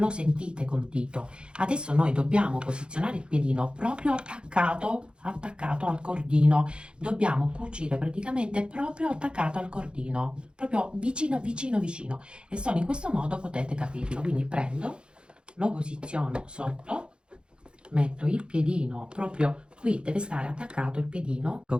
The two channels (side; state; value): left; late; 0.053 ms